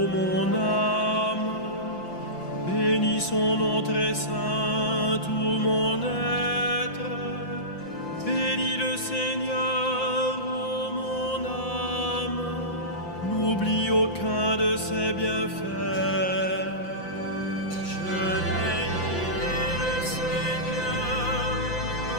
mon âme. Bénis son nom très saint, tout mon être. Bénis le Seigneur, ô mon âme, n'oublie aucun de ses bienfaits. Je bénirai le Seigneur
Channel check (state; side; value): late; right; 5.8 ms